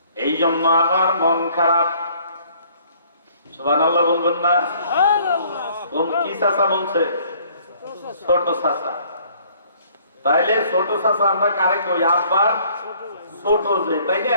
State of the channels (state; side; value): inverted; both; correlation -0.59